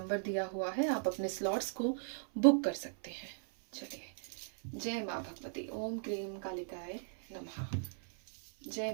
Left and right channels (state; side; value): silent; left; 53 dB below the other